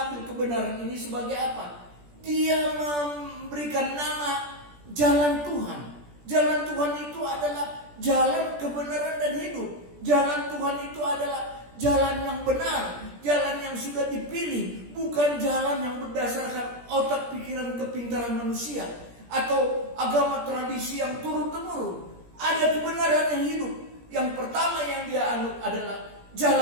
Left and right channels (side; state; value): left; late; 17 ms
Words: kebenaran ini sebagai apa? Dia memberikan nama jalan Tuhan. Jalan Tuhan itu adalah jalan kebenaran dan hidup. Jalan Tuhan itu adalah jalan yang benar, jalan yang sudah dipilih, bukan jalan yang berdasarkan otak pikiran kepintaran manusia atau agama tradisi yang turun-temurun. Ada kebenaran yang hidup. Yang pertama yang dia anut adalah